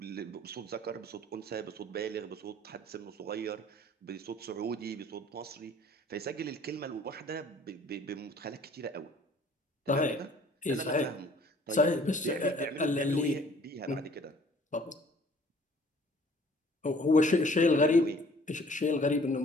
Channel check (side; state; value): both; normal; correlation 0.55